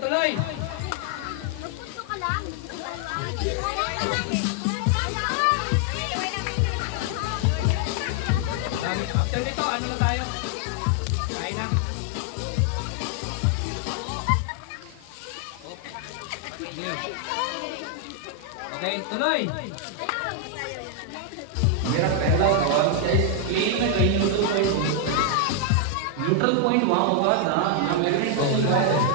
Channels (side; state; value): both; different; correlation 0.00